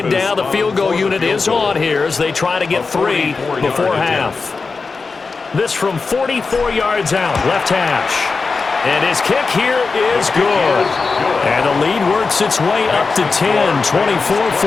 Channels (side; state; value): right; quieter; 4.4 dB